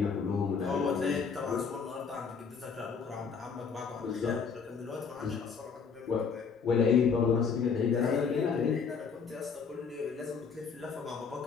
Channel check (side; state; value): right; quieter; 5.8 dB